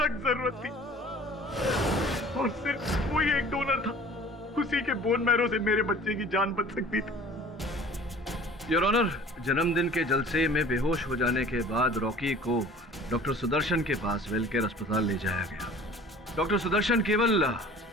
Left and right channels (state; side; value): normal; both; correlation 0.46